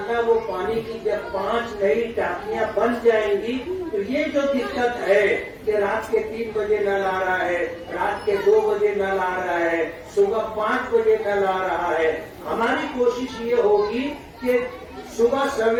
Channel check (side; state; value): both; identical; correlation 1.00